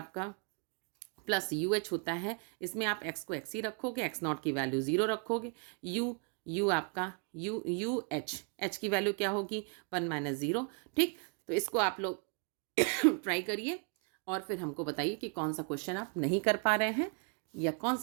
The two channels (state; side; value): quieter; left; 36.9 dB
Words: प्लस यू एच होता है। इसमें आप x को x ही रखोगे, एक्स नॉट की वैल्यू 0 रखोगे, u आपका यू एच की वैल्यू क्या होगी, 1 माइनस 0। ठीक, तो इसको आप लोग ट्राई करिए और फिर हमको बताइए कि कौन सा क्वेश्चन आप नहीं कर पा रहे हैं या कौन